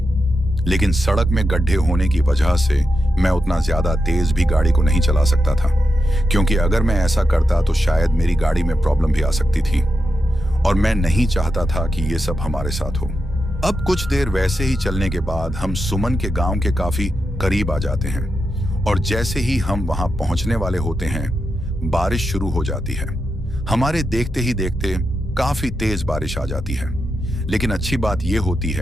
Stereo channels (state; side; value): normal; both; correlation 0.88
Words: लेकिन सड़क में गड्ढे होने की वजह से मैं उतना ज्यादा तेज भी गाड़ी को नहीं चला सकता था, क्योंकि अगर मैं ऐसा करता तो शायद मेरी गाड़ी में प्रॉब्लम भी आ सकती थी और मैं नहीं चाहता था कि ये सब हमारे साथ हो। अब कुछ देर वैसे ही चलने के बाद हम सुमन के गांव के काफी करीब आ जाते हैं और जैसे ही हम वहां पहुंचने वाले होते हैं बारिश शुरू हो जाती है। हमारे देखते ही देखते काफी तेज बारिश आ जाती है। लेकिन अच्छी बात यह होती